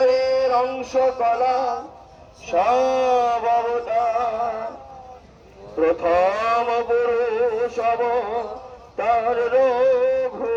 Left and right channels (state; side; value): identical; both; correlation 1.00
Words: অংশ কলা সব অবতার, প্রথম পুরুষ অবতার